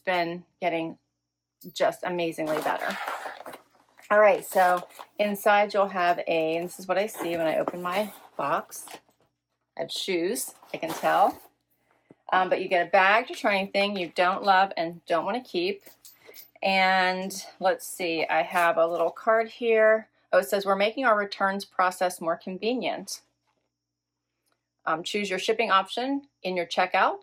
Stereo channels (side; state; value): both; identical; correlation 1.00